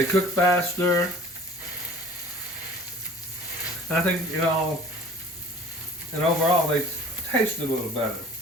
cook faster. And I think, and overall they taste a little better.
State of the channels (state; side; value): normal; both; correlation 0.47